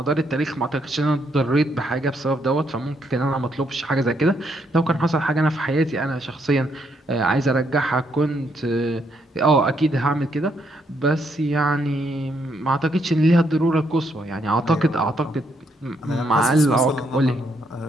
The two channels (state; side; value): normal; both; correlation 0.75